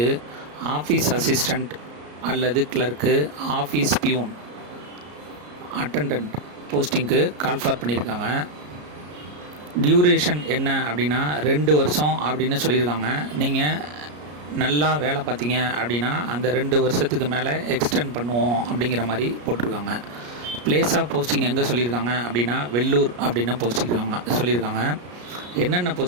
office assistant அல்லது கிளர்க்கு, ஆஃபீஸ் பியூன், அட்டண்டன்ட் போஸ்டிங்க்கு கால்ஃபார் பண்ணியிருக்காங்க. டியூரேஷன் என்ன அப்படின்னா 2 வருஷம் அப்படின்னு சொல்லியிருக்காங்க. நீங்கள் நல்லா வேலை பார்த்தீங்க அப்படின்னா அந்த 2 வருஷத்துக்கு மேலே எக்ஸ்டெண்ட் பண்ணுவோம் அப்படிங்கிற மாதிரி போட்டிருக்காங்க. பிளேஸ் ஆஃப் போஸ்டிங் எங்கே சொல்லியிருக்காங்க அப்படின்னா வெள்ளூர் அப்படின்னு சொல்லியிருக்காங்க. என்னென்ன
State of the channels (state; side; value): late; left; 33 ms